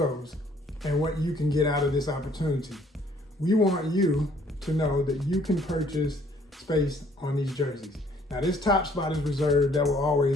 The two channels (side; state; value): both; normal; correlation 0.61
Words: and what you can get out of this opportunity. We want you to know that you can purchase space on these jerseys. Now this top spot is reserved. That will